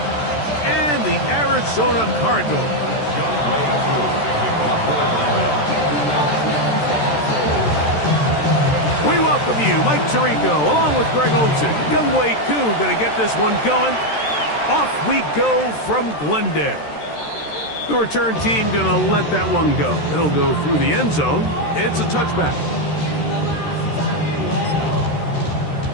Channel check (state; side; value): late; right; 13 ms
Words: and the Arizona Cardinals. We welcome you, Mike Tirico, along with Greg Olson. Young Wk10 going to get this one going. Off we go from Glendale. The return team going to let that one go. It'll go through the end zone. It's a touchback.